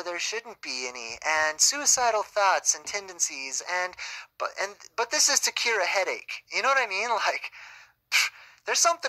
there shouldn't be any, and suicidal thoughts and tendencies, but this is to cure a headache. You know what I mean? Like, there's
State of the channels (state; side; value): identical; both; correlation 1.00